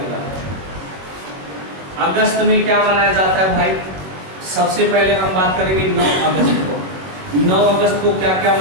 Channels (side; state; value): left; late; 22 ms